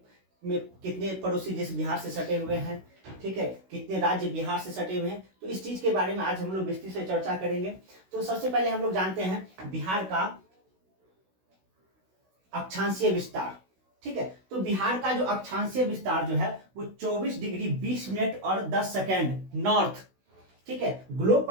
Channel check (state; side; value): late; left; 16 ms